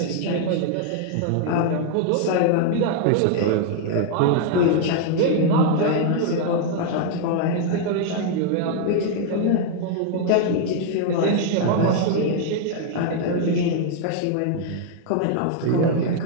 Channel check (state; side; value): different; both; correlation 0.00